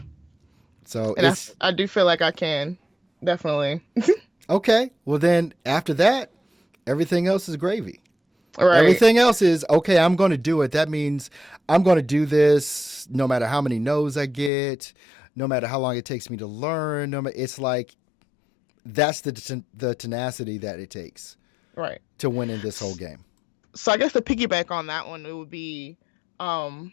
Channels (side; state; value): right; drops out; at 14.5 s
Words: So And it's I do feel like I can. Definitely. okay. Well, then after that, everything else is gravy. Right. Everything else is okay. I'm going to do it. That means I'm going to do this no matter how many no's I get, no matter how long it takes me to learn. It's like that's the tenacity that it takes Right. to win in this whole game. So I guess to piggyback on that one, it would be, um,